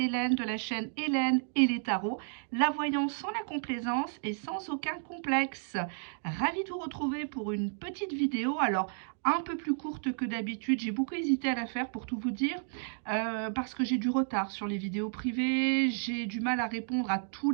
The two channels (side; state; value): left; silent; digital silence